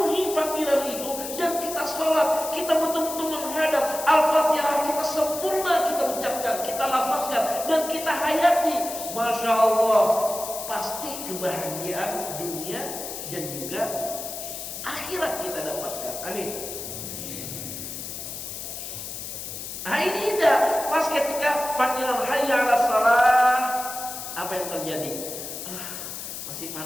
panggilan itu, dan kita sholat, kita betul-betul menghadap Al-Fatihah, kita sempurna, kita ucapkan, kita lafazkan, dan kita hayati. Masya Allah, pasti kebahagiaan dunia dan juga akhirat kita dapatkan. Amin. Nah ini indah. Pas ketika panggilan hayya 'alas shalah, apa yang terjadi? Masih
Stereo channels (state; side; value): noise; left; hiss, 8 dB below the sound